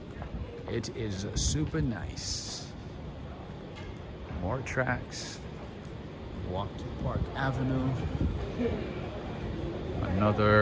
It is super nice. More tracks. Walk to Park Avenue.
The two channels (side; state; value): both; identical; correlation 1.00